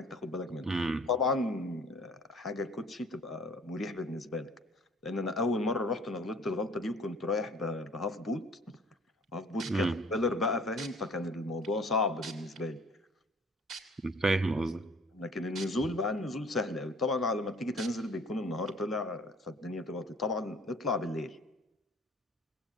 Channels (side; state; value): both; normal; correlation 0.52